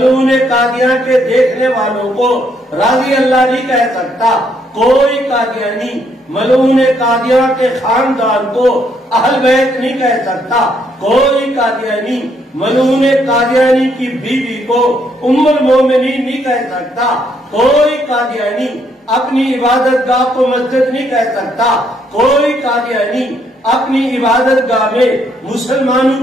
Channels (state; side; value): normal; both; correlation 0.72